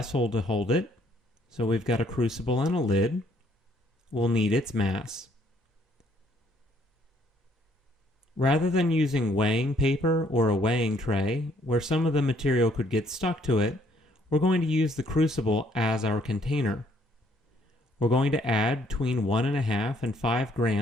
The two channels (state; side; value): normal; both; correlation 0.66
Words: to hold it. So we've got a crucible and a lid. We'll need its mass. Rather than using weighing paper or a weighing tray, where some of the material could get stuck to it, we're going to use the crucible as our container. We're going to add between 1.5 and 5